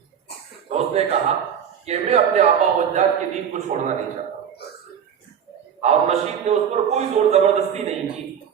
تو اس نے کہا کہ میں اپنے آبا و اجداد کے دین کو چھوڑنا نہیں چاہتا۔ ہارون رشید نے اس پر کوئی زور زبردستی نہیں کی،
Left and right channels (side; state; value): left; quieter; 8.3 dB